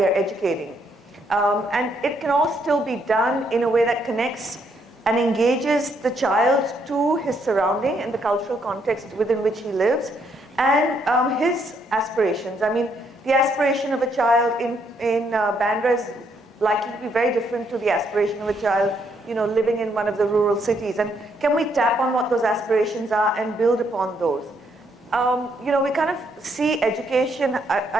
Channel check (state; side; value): normal; both; correlation 0.73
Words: are educating. And it can all still be done in a way that connects and engages the child to his surrounding and the cultural context within which he lives, and his aspirations. I mean, the aspiration of a child in Bandra is likely to be very different to the aspiration of a child living in one of the rural cities. And can we tap on what those aspirations are and build upon those? We kind of see education,